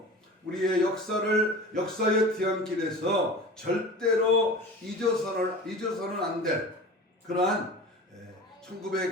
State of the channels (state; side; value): normal; both; correlation 0.36